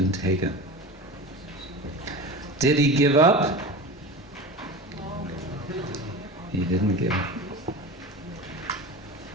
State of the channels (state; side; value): normal; both; correlation 0.30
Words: taken. Did he give up? He didn't give up.